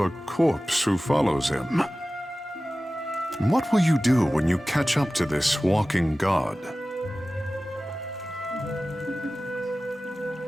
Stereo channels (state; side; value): normal; both; correlation 0.96